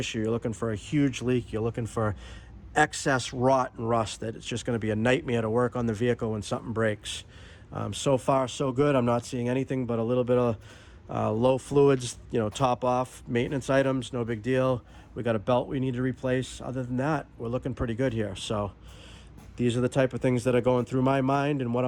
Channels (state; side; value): identical; both; correlation 1.00